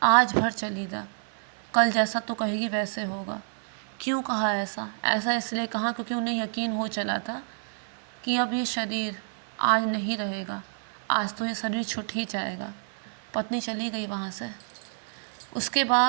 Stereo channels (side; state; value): left; silent; digital silence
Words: आज भर चली जा, कल जैसा तो कहेगी वैसे होगा। क्यों कहा ऐसा? ऐसा इसलिए कहा क्योंकि उन्हें यकीन हो चला था कि अब ये शरीर आज नहीं रहेगा, आज तो ये शरीर छूट ही जाएगा। पत्नी चली गई वहाँ से। उसके